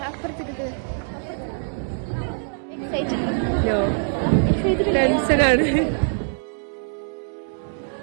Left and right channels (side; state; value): left; silent; 63 dB below the other